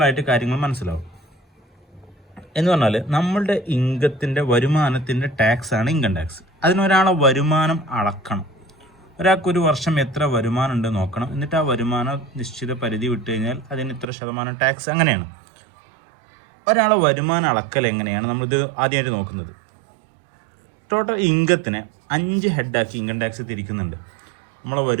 കാര്യങ്ങൾ മനസ്സിലാവും. എന്ന് പറഞ്ഞാൽ നമ്മളുടെ ഇൻകത്തിൻ്റെ വരുമാനത്തിൻ്റെ ടാക്സാണ് ഇൻകം ടാക്സ്. അതിനൊരാളെ വരുമാനം അളക്കണം. ഒരാൾക്കൊരു വർഷം എത്ര വരുമാനം ഉണ്ട് നോക്കണം. എന്നിട്ട് ആ വരുമാനം നിശ്ചിത പരിധി വിട്ട് കഴിഞ്ഞാൽ അതിന് ഇത്ര ശതമാനം ടാക്സ്. അങ്ങനെയാണ് ഒരാളെ വരുമാനം അളക്കൽ. എങ്ങനെയാണ് നമ്മളിത് ആദ്യമായിട്ട് നോക്കുന്നത്? ടോട്ടൽ ഇൻകത്തിനെ 5 ഹെഡാക്കി ഇൻകം ടാക്സ് തിരിക്കുന്നുണ്ട്. നമ്മളെ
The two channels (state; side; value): drops out; left; at 14.1 s